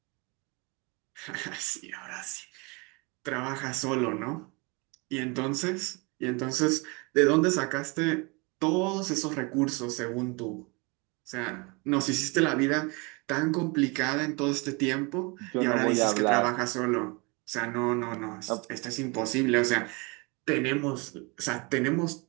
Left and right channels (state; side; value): quieter; left; 28.7 dB